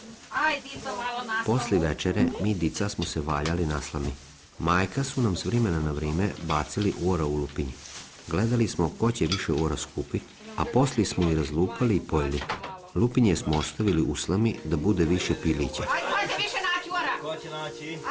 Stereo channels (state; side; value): identical; both; correlation 1.00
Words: Aj, dico, malo naslamu. Posli večere mi dica smo se valjali na slami. Majka su nam s vremena na vrijeme bacili ora u lupinji. Gledali smo ko će više ora skupiti, a posli smo i razlupali i pojeli. Lupinje smo ostavili u slami da bude više pilića. Ajde, više naći ora. Ko će naći?